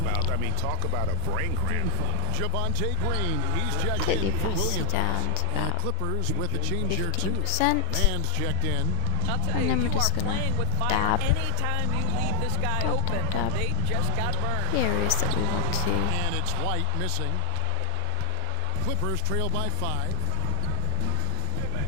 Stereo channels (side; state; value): both; different; correlation 0.00